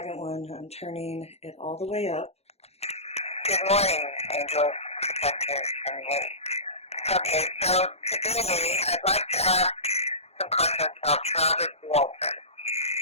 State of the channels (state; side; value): late; right; 0.30 ms